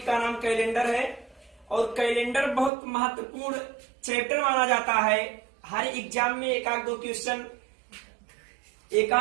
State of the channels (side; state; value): left; drops out; at 2.7 s